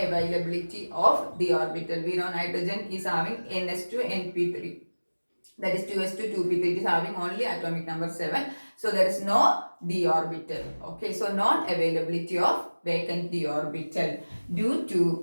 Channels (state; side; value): inverted; both; correlation -1.00